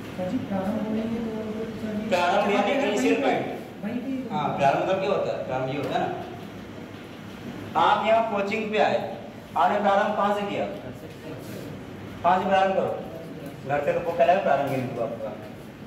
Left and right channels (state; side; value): identical; both; correlation 1.00